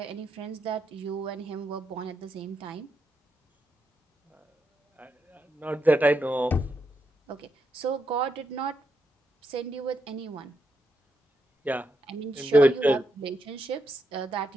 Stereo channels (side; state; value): both; normal; correlation 0.82